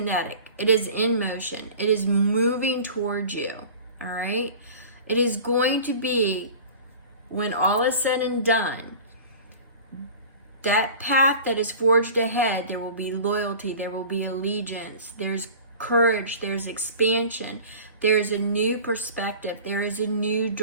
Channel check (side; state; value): both; inverted; correlation -0.40